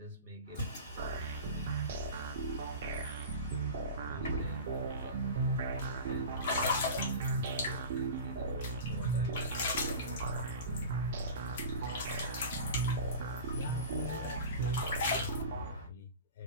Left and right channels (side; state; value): both; inverted; correlation -0.33